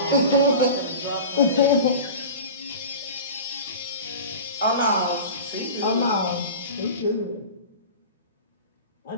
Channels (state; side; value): inverted; both; correlation -0.34